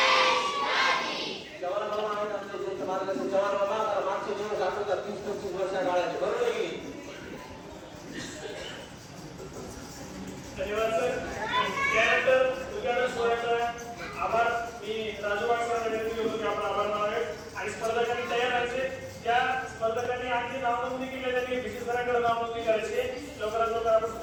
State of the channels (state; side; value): identical; both; correlation 1.00